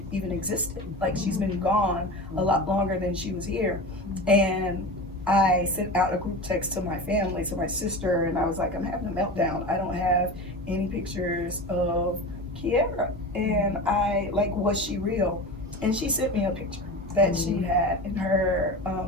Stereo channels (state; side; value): normal; both; correlation 0.29